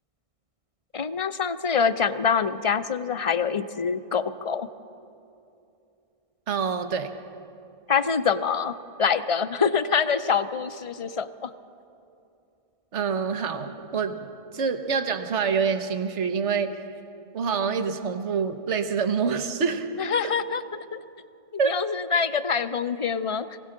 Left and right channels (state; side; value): late; left; 1.6 ms